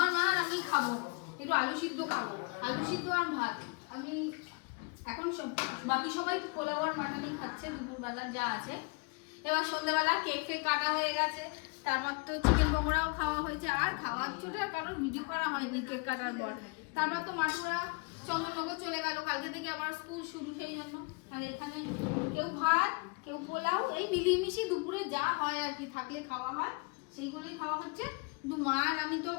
মা আর আমি খাবো। একটু আলু সিদ্ধ খাবো, আলু সিদ্ধ আর ভাত। আমি এখন সব, বাকি সবাই পোলাও আর মাটনই খাচ্ছে দুপুরবেলা যা আছে। এবার সন্ধ্যাবেলা কেক ফেক কাটা হয়ে গেছে, তারপর তো চিকেন পকোড়াও খাওয়া হয়েছে। আর খাওয়ার চোটে আর কারোর ভিডিও করা হয়নি কেক কাটার পর। তারপর তো মাটুরা চন্দননগর চলে গেল, কালকে থেকে আবার স্কুল শুরু, সেই জন্য। আর এখানে কেউ ভাত, কেউ পোলাও, এই মিলিয়ে দুপুরে যা হয় আর কি, থাকলে খাওয়া হয় সেইগুলোই খাওয়া হচ্ছে। কিন্তু মা আর আমি তো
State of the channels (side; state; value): right; quieter; 31.2 dB